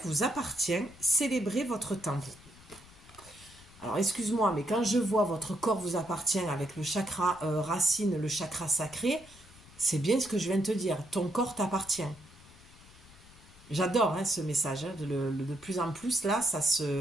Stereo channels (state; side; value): noise; left; rumble, 23 dB below the sound